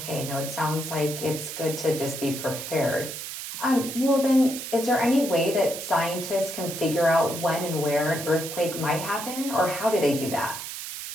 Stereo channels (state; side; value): noise; right; hiss, 8 dB below the sound